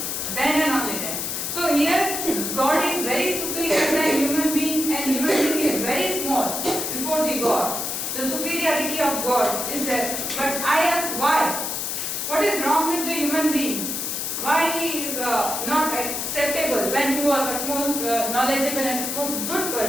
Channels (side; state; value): left; noise; hiss, 2 dB below the sound